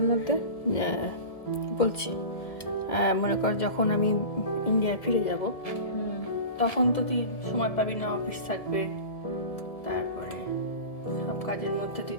মধ্যে? বলছি, মনে কর যখন আমি ইন্ডিয়ায় ফিরে যাব তখন তো তুই সময় পাবি না, অফিস থাকবে, তারপরে সব কাজের মধ্যে তুই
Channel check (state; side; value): late; right; 1.7 ms